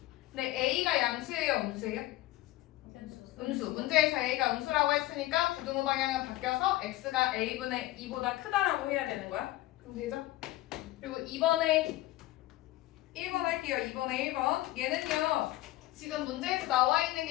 근데 A가 양수예요? 음수예요? 음수. 문제에서 A가 음수라고 했으니까 부등호 방향은 바뀌어서 X가 A분의 2보다 크다라고 해야 되는 거야. 그럼 되죠? 그리고 2번에 1번 할게요. 2번에 1번. 얘는요. 지금 문제에서 나와 있는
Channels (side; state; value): right; quieter; 17.1 dB